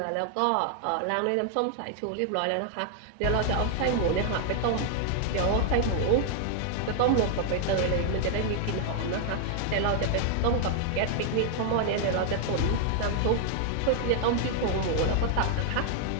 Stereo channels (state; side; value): different; both; correlation 0.00